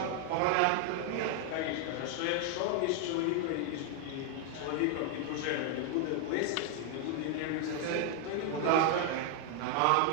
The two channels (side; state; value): both; different; correlation 0.00